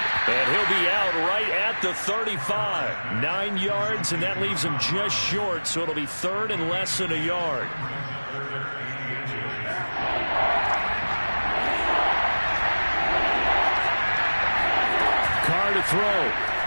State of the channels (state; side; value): inverted; both; correlation -1.00